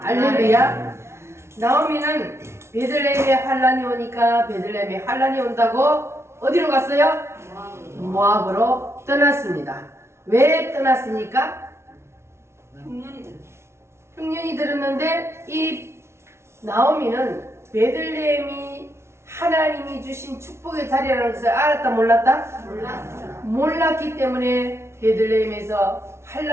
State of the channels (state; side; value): late; left; 0.13 ms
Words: 나오미는 베들레헴에 환란이 오니까 베들레헴에 환란이 온다고 어디로 갔어요? 모압으로 떠났습니다. 왜 떠났습니까? 흉년이 들었는데 이 나오미는 베들레헴이 하나님이 주신 축복의 자리라는 것을 알았다 몰랐다? 몰랐기 때문에 베들레헴에서